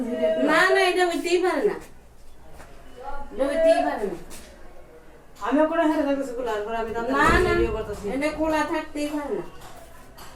না না, এটা হইতেই পারে না, এটা হইতেই পারে না। আমি ওখানে হেরে দেখতেছি গুলার পর আমি দাদা না না, ভিডিও করতেছি এটা খোলা থাকতেই পারে না।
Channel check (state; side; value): identical; both; correlation 1.00